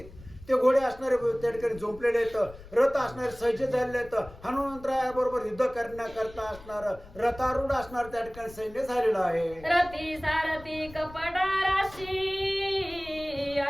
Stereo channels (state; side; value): noise; left; rumble, 19 dB below the sound